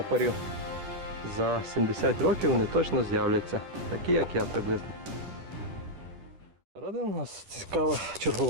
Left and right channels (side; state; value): left; late; 11 ms